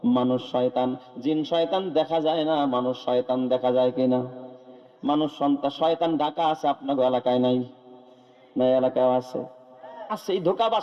মানুষ শয়তান। জিন শয়তান দেখা যায় না, মানুষ শয়তান দেখা যায় কিনা? মানুষ শয়তান ঢাকা আছে, আপনার এলাকায় নাই? না, এলাকায় আছে। আছে, এই ধোঁকাবাজ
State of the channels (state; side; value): identical; both; correlation 1.00